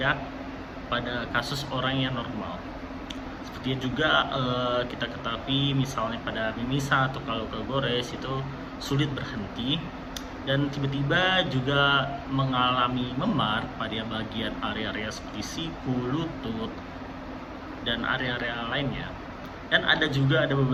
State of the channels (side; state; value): both; identical; correlation 1.00